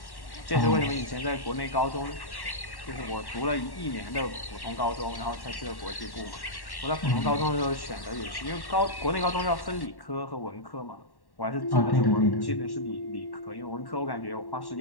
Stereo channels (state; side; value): late; right; 1.1 ms